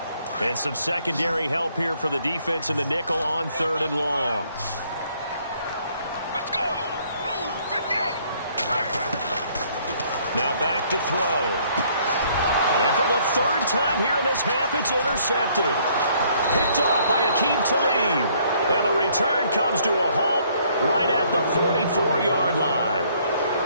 And some secondary help here for the defense in the nickel on 3rd and long. Let's go. Now back to throw. And for the 3rd time here in this half, it's intercepted. Picked off by Akeem Talib. And the return comes to a halt right at the 44-yard line.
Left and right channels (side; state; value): both; inverted; correlation -0.64